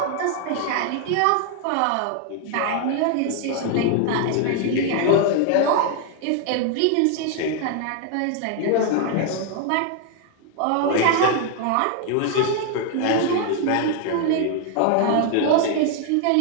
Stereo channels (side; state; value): both; different; correlation 0.00